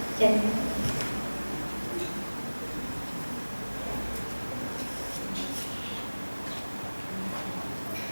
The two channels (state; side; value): inverted; both; correlation -1.00